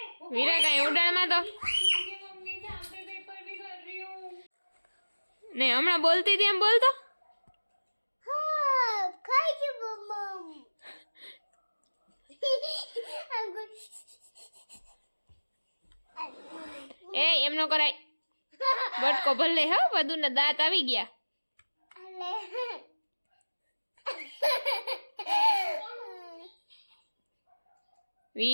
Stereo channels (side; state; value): both; inverted; correlation -1.00